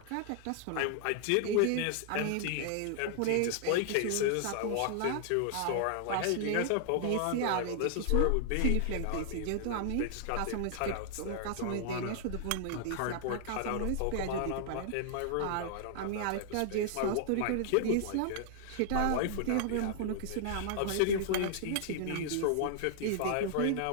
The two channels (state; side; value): different; both; correlation -0.01